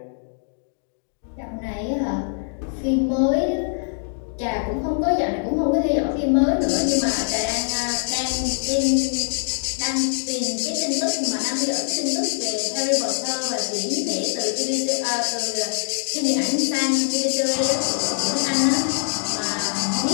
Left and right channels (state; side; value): silent; right; digital silence